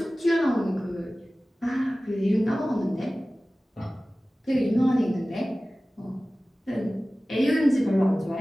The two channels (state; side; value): normal; both; correlation 0.97